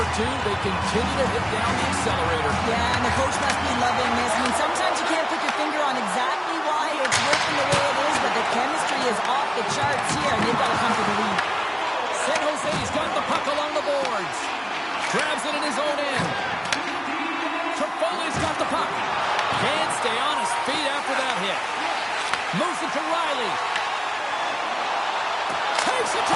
2. They continue to hit down the accelerator. Yeah, and the coach must be loving this. I mean, sometimes you can't put your finger on exactly why it's working the way it is, but the chemistry is off the charts here, and they've got to come to the lead. San Jose's got the puck along the boards. Grabs it in his own end. Trifoli's got the puck. Can't stay on his feet after that hit. Moves it to Riley. Takes it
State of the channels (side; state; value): both; identical; correlation 1.00